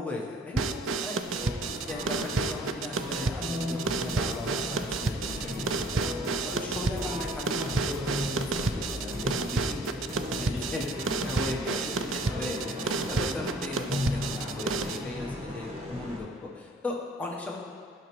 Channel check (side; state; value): both; normal; correlation 0.54